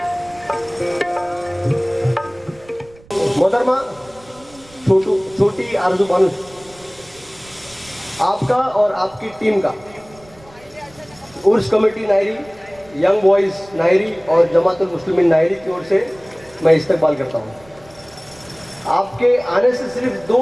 मोहतरमा छोटी आरजू बानू, आपका और आपकी टीम का उर्स committee Nayari, young boys Nayari और जमातुल मुस्लिमीन नायरी की ओर से मैं इस्तकबाल करता हूँ. आपके आने से सिर्फ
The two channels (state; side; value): noise; right; rumble, 25 dB below the sound